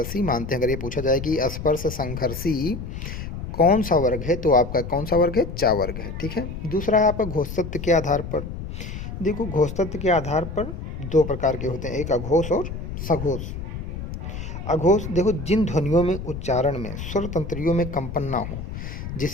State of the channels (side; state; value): left; noise; rumble, 7 dB below the sound